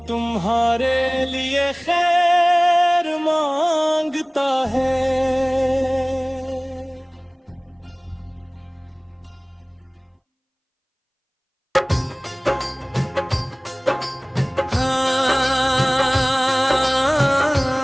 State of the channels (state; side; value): identical; both; correlation 1.00